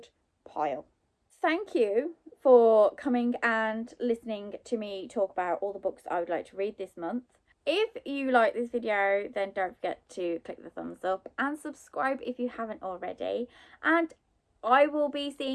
pile. Thank you for coming and listening to me talk about all the books I would like to read this month. If you like this video, then don't forget to click the thumbs up and subscribe if you haven't already. And I will be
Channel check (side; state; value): both; identical; correlation 1.00